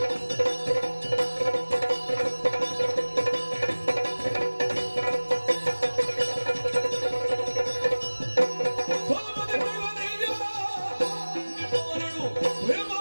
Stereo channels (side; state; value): both; inverted; correlation -1.00